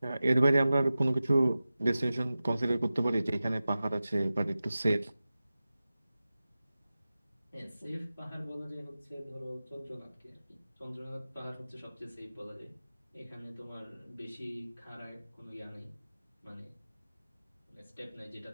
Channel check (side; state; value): both; inverted; correlation -0.95